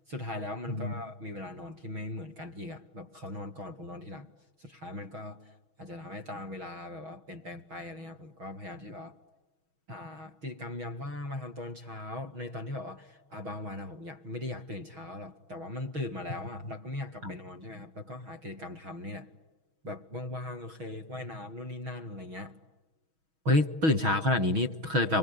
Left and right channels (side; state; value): left; late; 6.2 ms